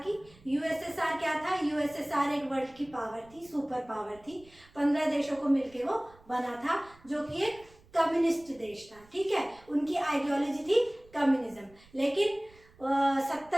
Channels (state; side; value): noise; right; rumble, 26 dB below the sound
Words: यूएसएसआर क्या था? यूएसएसआर एक वर्ल्ड की पावर थी, सुपर पावर थी। 15 देशों को मिलकर वो बना था, जो कि एक कम्युनिस्ट देश था। ठीक है, उनकी आइडियोलॉजी थी कम्युनिज्म। लेकिन